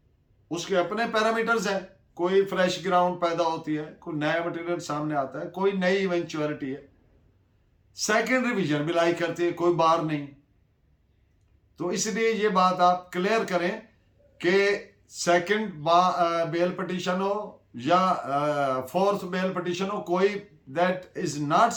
उसके अपने पैरामीटर्स हैं। कोई फ्रेश ग्राउंड पैदा होती है, कोई नया मटेरियल सामने आता है, कोई नई इवेंचुअलिटी है, सेकंड रिवीजन भी लाई करती है, कोई बार नहीं। तो इसलिए ये बात आप क्लियर करें कि सेकंड बेल पिटीशन हो या फोर्थ बेल पिटीशन हो, कोई that is not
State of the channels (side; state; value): both; identical; correlation 1.00